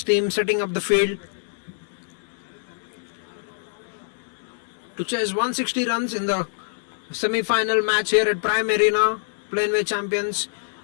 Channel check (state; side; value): silent; right; digital silence